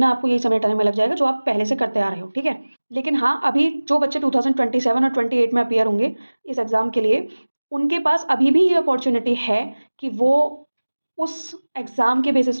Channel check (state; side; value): inverted; both; correlation -1.00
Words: आपको यही समेटने में लग जाएगा जो आप पहले से करते आ रहे हो, ठीक है। लेकिन हाँ, अभी जो बच्चे 2027 और 28 में अपियर होंगे इस एग्जाम के लिए, उनके पास अभी भी ये अपॉर्चुनिटी है कि वो उस एग्ज़ाम के बेसिस